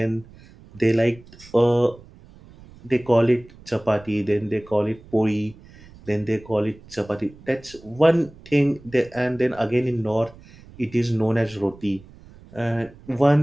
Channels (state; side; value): noise; right; rumble, 22 dB below the sound